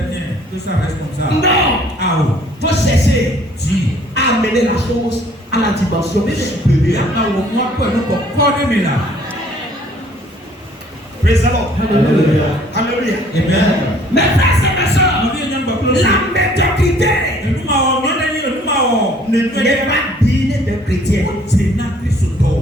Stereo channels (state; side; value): normal; both; correlation 0.58